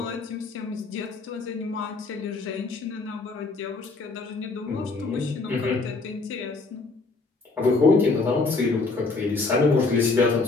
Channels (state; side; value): quieter; right; 3.8 dB